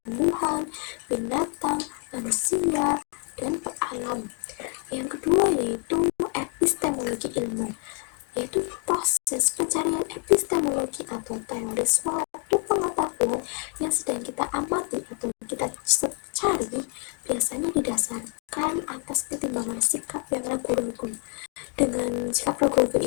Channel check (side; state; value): right; quieter; 37.3 dB